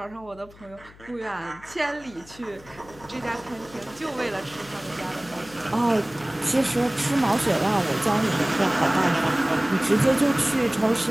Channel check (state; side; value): noise; left; hum, 23 dB below the sound